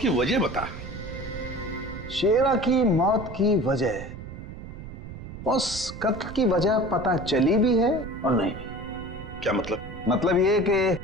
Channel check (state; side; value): noise; right; rumble, 11 dB below the sound